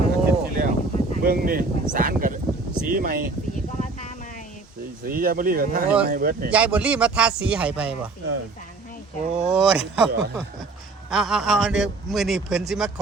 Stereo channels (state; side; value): quieter; left; 3.7 dB